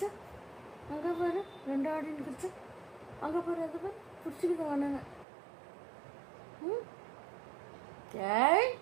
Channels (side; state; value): left; drops out; at 5.2 s